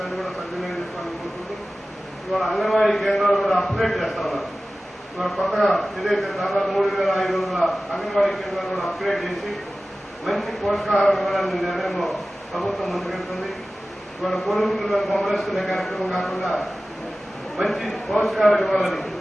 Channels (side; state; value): both; normal; correlation 0.96